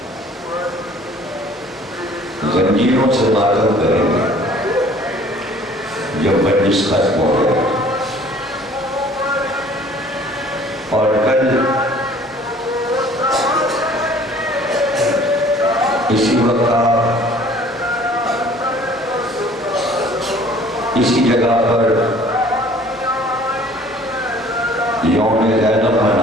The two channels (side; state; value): both; normal; correlation 0.53